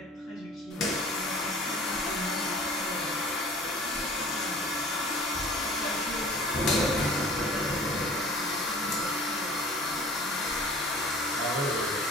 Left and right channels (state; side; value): normal; both; correlation 0.46